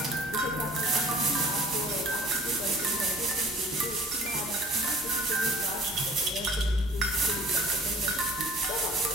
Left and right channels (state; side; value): normal; both; correlation 0.50